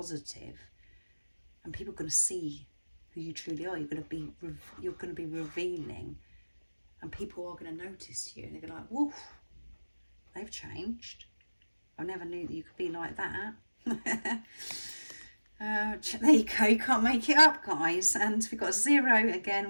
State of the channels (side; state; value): both; inverted; correlation -1.00